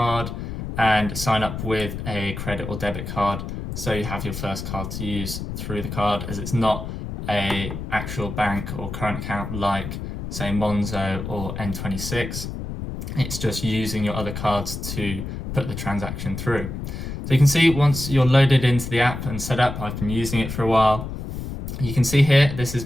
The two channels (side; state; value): left; noise; rumble, 7 dB below the sound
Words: and sign up with a credit or debit card so you have your first card to use through the card, as it's not a actual bank or current account like say Monzo or N26. It's just using your other cards to put the transaction through. So you can see once you're loaded into the app and set up, I've been using it for a while. You can see here, this is